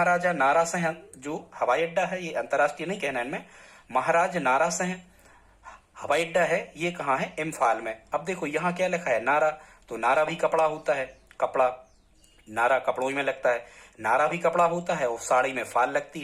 नारा सिंह जो हवाई अड्डा है, ये अंतर्राष्ट्रीय नहीं कहना इनमें, महाराज नारा सिंह हवाई अड्डा है, ये कहाँ है, इम्फाल में। अब देखो यहाँ क्या लिखा है, नारा। तो नारा भी कपड़ा होता है, कपड़ा, नारा कपड़ों में लगता है, नारा भी कपड़ा होता है, और साड़ी में फाल लगती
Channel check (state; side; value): identical; both; correlation 1.00